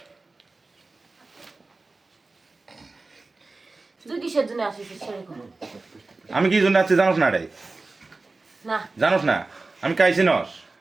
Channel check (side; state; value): left; quieter; 3.5 dB